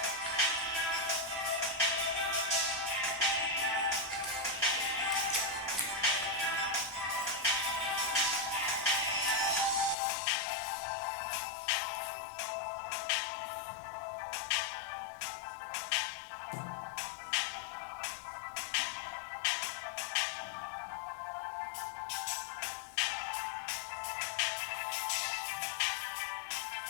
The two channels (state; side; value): drops out; right; at 10.0 s